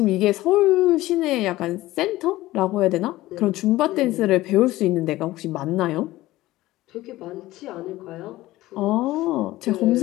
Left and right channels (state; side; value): quieter; right; 17.1 dB